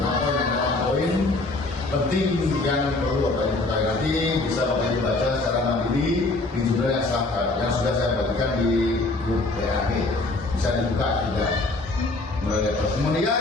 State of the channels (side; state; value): right; quieter; 3.1 dB